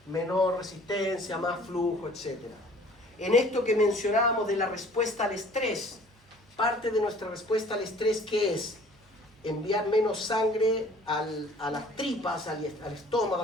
menor resistencia, más flujo, etc. En esto que mencionábamos de la respuesta al estrés, parte de nuestra respuesta al estrés, ¿qué es? Enviar menos sangre a las tripas, al estómago,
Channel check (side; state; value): both; normal; correlation 0.52